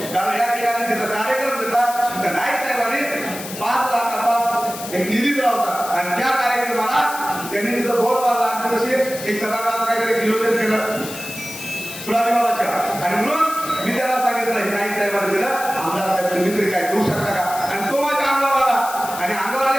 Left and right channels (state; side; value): noise; left; hiss, 11 dB below the sound